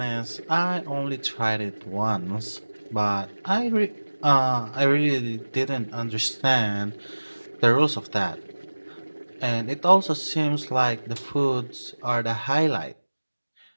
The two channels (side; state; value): both; inverted; correlation -1.00